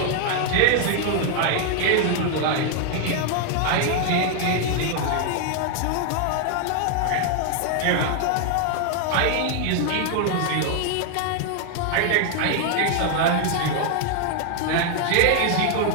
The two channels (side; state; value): both; different; correlation 0.00